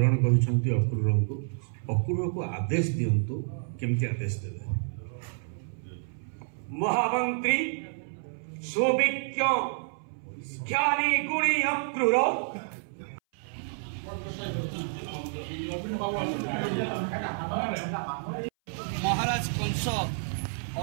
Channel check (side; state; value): left; silent; 58 dB below the other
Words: कर अक्रूर को आदेश दिंतु केमती आदेश देवे। महामंत्री सुविज्ञ ज्ञानी गुणी अक्रूर महाराज कंस